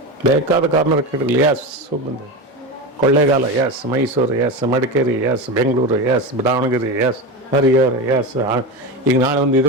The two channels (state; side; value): normal; both; correlation 0.21